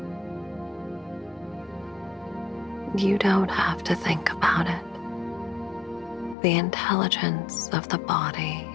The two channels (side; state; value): right; drops out; at 6.4 s